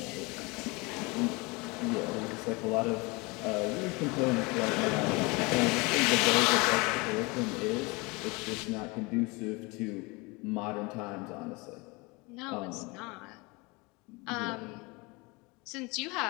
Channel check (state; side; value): quieter; right; 26.4 dB